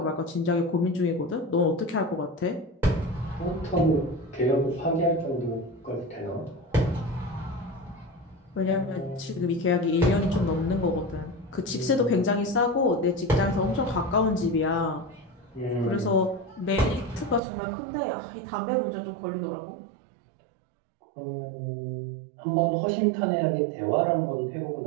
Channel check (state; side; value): drops out; left; at 17.4 s